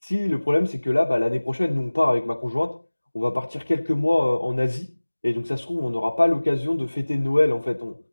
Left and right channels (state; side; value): inverted; both; correlation -1.00